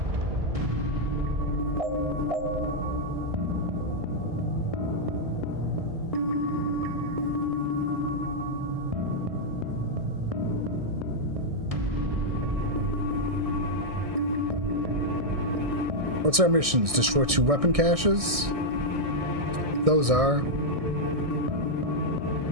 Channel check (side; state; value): left; late; 1.6 ms